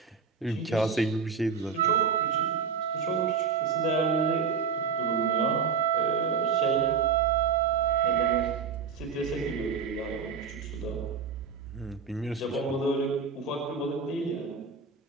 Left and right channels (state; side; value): quieter; left; 6.0 dB